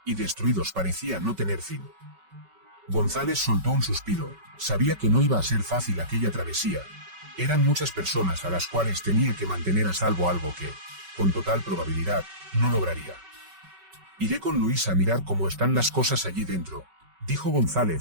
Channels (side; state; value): left; late; 5.3 ms